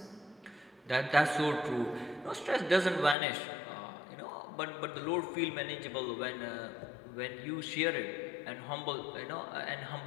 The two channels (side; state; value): right; drops out; at 3.2 s